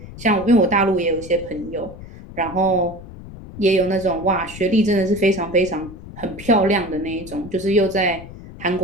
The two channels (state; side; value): noise; left; rumble, 15 dB below the sound